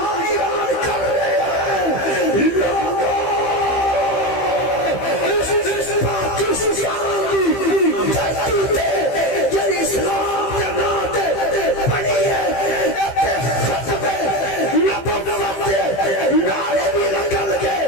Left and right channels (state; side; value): late; right; 15 ms